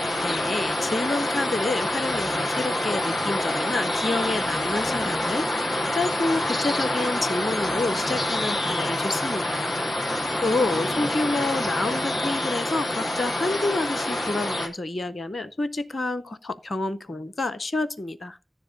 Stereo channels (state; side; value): normal; both; correlation 0.89